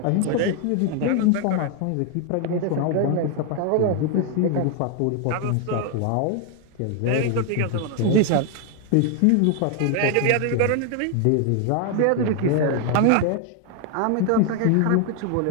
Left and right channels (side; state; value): both; different; correlation 0.01